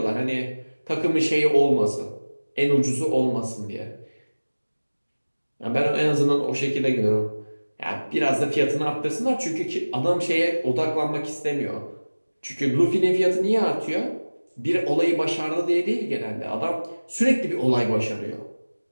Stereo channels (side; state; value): both; inverted; correlation -1.00